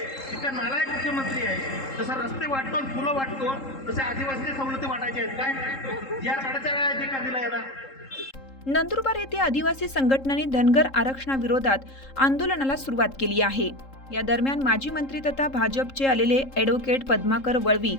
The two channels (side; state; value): right; late; 3.7 ms